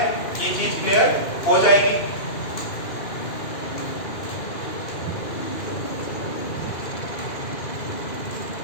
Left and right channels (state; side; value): late; right; 2.5 ms